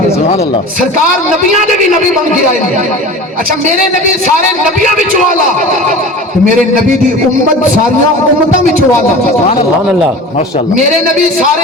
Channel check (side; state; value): both; normal; correlation 0.36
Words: سبحان اللہ، سرکار نبیاں دے بھی نبی بن کے آئے گے۔ اچھا میرے نبی سارے نبیاں وچوں والا، تو میرے نبی دی امت ساریاں امتاں وچوں والا، سبحان اللہ، ماشاء اللہ، میرے نبی